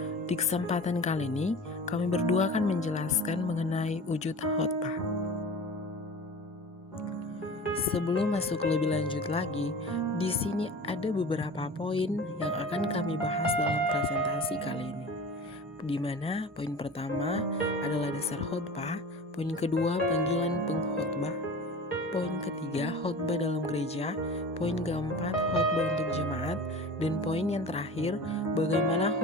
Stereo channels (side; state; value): both; normal; correlation 0.37